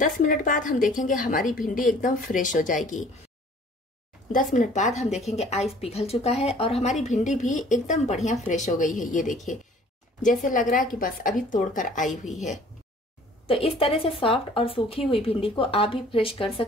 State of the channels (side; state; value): both; normal; correlation 0.53